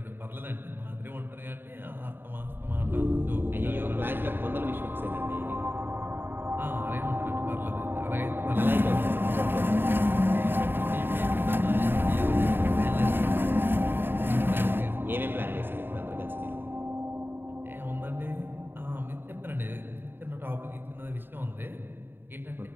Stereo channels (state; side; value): late; left; 0.099 ms